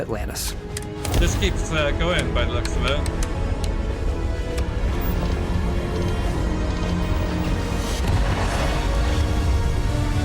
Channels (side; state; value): both; identical; correlation 1.00